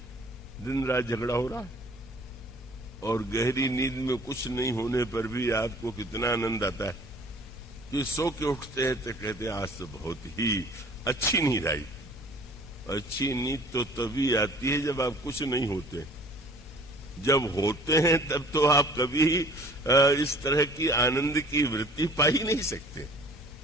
दिन रात झगड़ा हो रहा है, और गहरी नींद में कुछ नहीं होने पर भी आपको कितना आनंद आता है कि सो के उठते हैं तो कहते हैं आज तो बहुत ही अच्छी नींद आई। अच्छी नींद तो तभी आती है जब आप कुछ नहीं होते। जब होते हैं तब तो आप कभी इस तरह की आनंद की वृत्ति पा ही नहीं सकते।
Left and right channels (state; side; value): normal; both; correlation 0.50